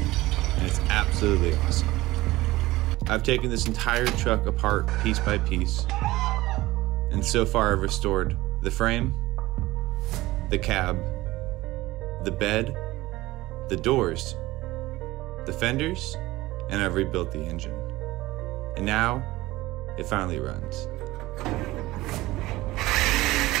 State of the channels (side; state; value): left; quieter; 18.4 dB